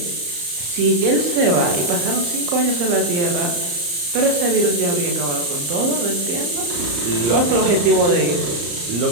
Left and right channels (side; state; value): left; late; 34 ms